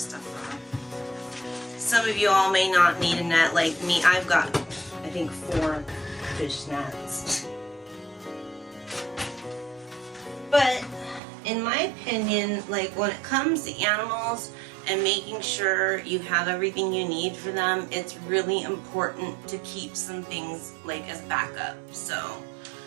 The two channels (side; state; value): left; drops out; at 11.2 s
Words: stuff off. Some of you all may not need a net like me. I've got, I think, 4 fish nets. But in my opinion, like when it comes to animals and making sure you have everything you need for them, it's really important to keep some things like as backup. So